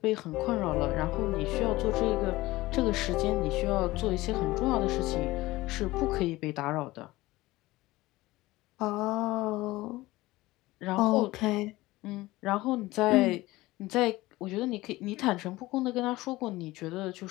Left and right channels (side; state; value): right; quieter; 19.0 dB